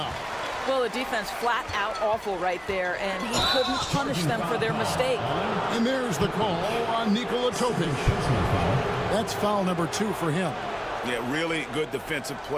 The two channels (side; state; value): both; identical; correlation 1.00